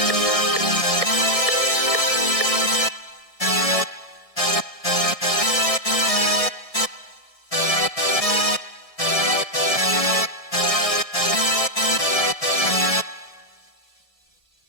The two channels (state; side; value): late; right; 1.6 ms